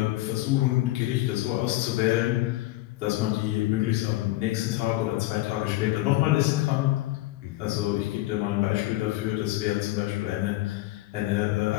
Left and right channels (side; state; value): right; quieter; 17.6 dB